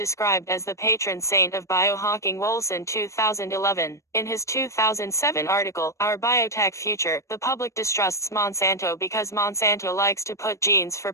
as the patron saint of biohacking. Wolson 2011. In his 2007 article, Our Biotech Future, the public distrusts Monsanto because Monsanto likes to put genes for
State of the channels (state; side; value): late; right; 0.15 ms